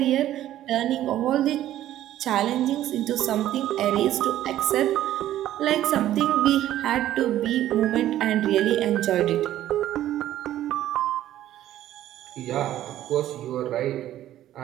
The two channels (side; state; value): left; quieter; 12.9 dB